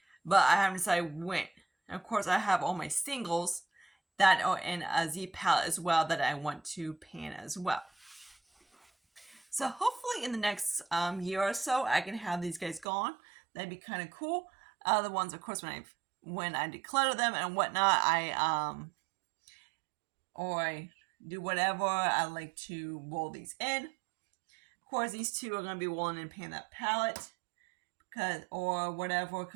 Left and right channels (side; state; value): left; drops out; at 12.9 s